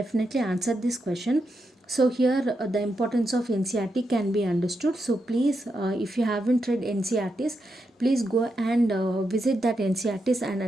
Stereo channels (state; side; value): normal; both; correlation 0.84